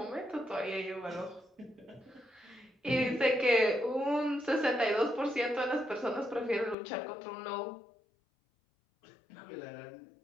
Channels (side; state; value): right; drops out; at 6.8 s